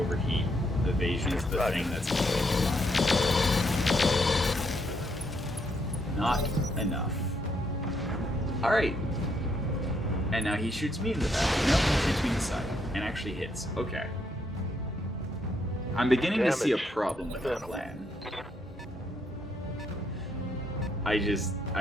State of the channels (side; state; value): both; normal; correlation 0.75